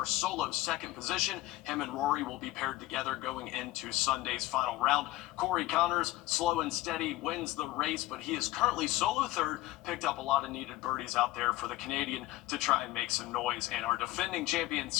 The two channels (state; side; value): quieter; right; 17.3 dB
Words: solo second position. Him and Rory will be paired together going into Sunday's final round. Corey Connors, slow and steady, wins the race, but he is currently solo third. Picked up a lot of needed birdies out there for the Canadian to try and make some noise. And our defending champion,